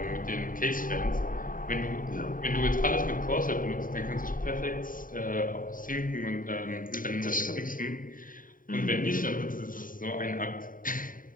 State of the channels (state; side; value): late; right; 0.40 ms